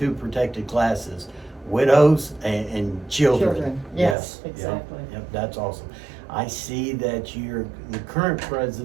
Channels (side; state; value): left; drops out; at 4.2 s